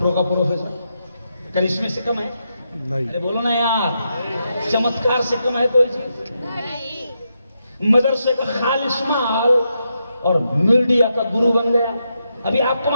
کا پروفیسر کرشمے سے کم ہے؟ ارے بولو نا یار، چمتکار سے کم ہے کوئی چیز؟ مدرسے کا خالص مال اور میڈیا کا گرو بن گیا. ابھی آپ کو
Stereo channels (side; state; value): both; inverted; correlation -0.83